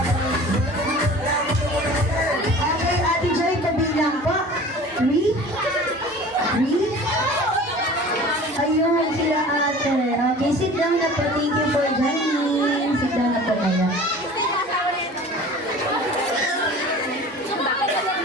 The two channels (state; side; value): normal; both; correlation 0.42